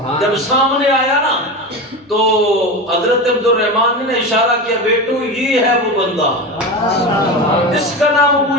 جب سامنے آیا نا تو حضرت عبد الرحمن نے اشارہ کیا بیٹو یہ ہے وہ بندہ، اس کا نام ابو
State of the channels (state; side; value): normal; both; correlation 0.24